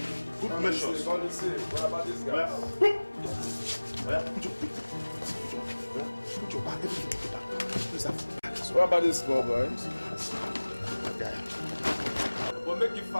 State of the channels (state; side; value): inverted; both; correlation -1.00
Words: Good measures. What about this guy? Put your back. Everything put your back. Where's that? What about this small boy? Yeah. But make it